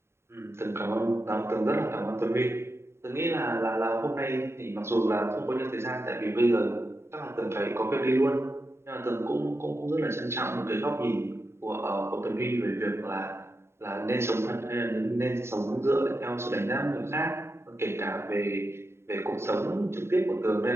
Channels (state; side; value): late; left; 0.12 ms